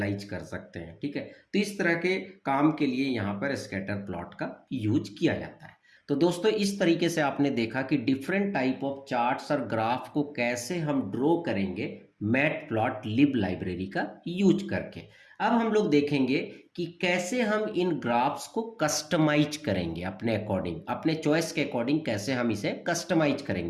कर सकते हैं। ठीक है, तो इस तरह के काम के लिए यहाँ पर स्कैटर प्लॉट का यूज किया जाता है। तो दोस्तों इस तरीके से आपने देखा कि डिफरेंट टाइप ऑफ चार्ट्स और ग्राफ को कैसे हम ड्रॉ करेंगे मैटप्लॉटलिब लाइब्रेरी का यूज करके। अब हम लोग देखेंगे कि कैसे हम इन ग्राफ्स को कस्टमाइज करेंगे अपने अकॉर्डिंग, अपने चॉइस के अकॉर्डिंग कैसे हम इसे कस्टमाइज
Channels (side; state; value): both; identical; correlation 1.00